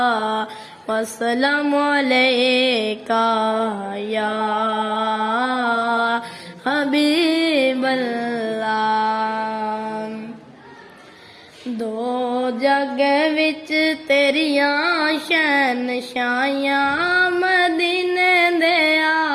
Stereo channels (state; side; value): identical; both; correlation 1.00